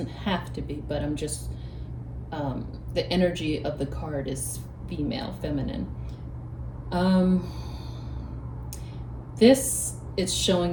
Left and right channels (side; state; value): both; identical; correlation 1.00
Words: have to be, but I'm just, the energy of the card is female, feminine. This it's